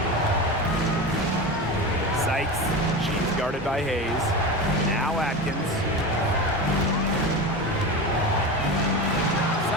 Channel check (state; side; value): normal; both; correlation 0.25